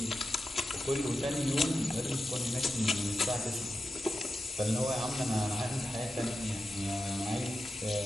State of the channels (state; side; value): normal; both; correlation 0.90